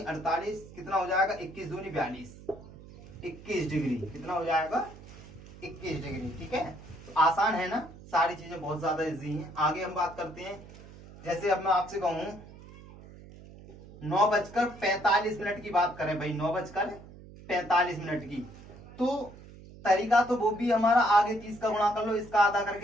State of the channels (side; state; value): right; noise; hum, 18 dB below the sound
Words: 48, कितना हो जाएगा, 21 दूनी 42, 21 डिग्री। कितना हो जाएगा, 21 डिग्री। ठीक है, तो आसान है ना, सारी चीजें बहुत ज्यादा इजी हैं। आगे हम बात करते हैं। जैसे अब मैं आपसे कहूं 9:45 की बात करें भाई, 9:45 की, तो तरीका तो वो भी हमारा, आगे 30 का गुणा कर लो, इसका आधा